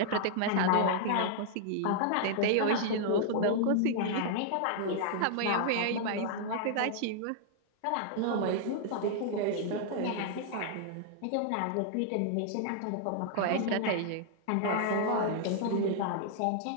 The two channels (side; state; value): both; different; correlation -0.01